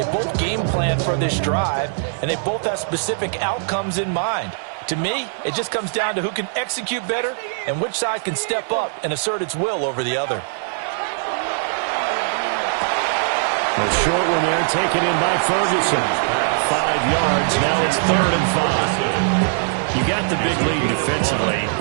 both game plan for this drive, and they both have specific outcomes in mind. To me, it just comes down to who can execute better and which side can step up and assert its will over the other. A short one there, taken in by Ferguson. 5 yards, now it's 3rd and 5. You got the big lead defensively.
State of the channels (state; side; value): silent; left; 59 dB below the other